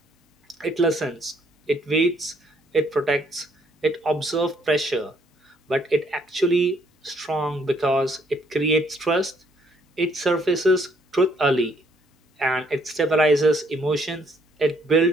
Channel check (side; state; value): both; normal; correlation 0.67